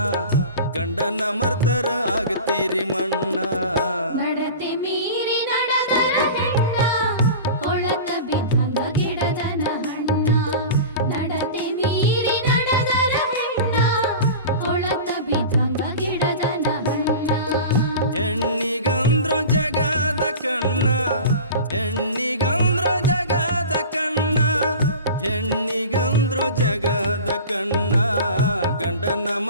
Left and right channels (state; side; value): inverted; both; correlation -0.35